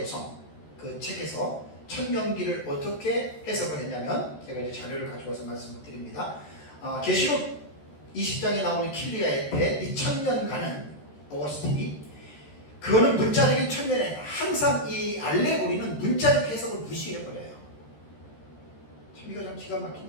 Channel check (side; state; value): right; late; 13 ms